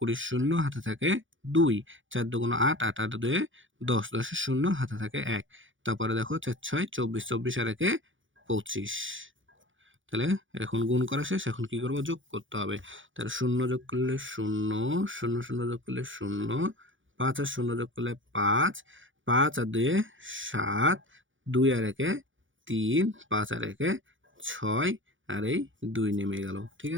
শূন্য হাতে থাকে 2, 4 দুগুণ 8, 8 আর 2 10, 10 এর 0 হাতে থাকে 1। তারপরে দেখো 4 6 24, 24 আর 1 25। তাহলে এখন গুণ করা শেষ, এখন কি করব, যোগ করতে হবে। তাহলে 0 যোগ করলে 0, 0 0 যোগ করলে 0, 5 আর 0 যোগ করলে 5, 5 আর 2 7, 2 আর 1 3, 5 আর 1 6 আর এই 2 নেমে গেল, ঠিক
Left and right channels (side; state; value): left; late; 0.56 ms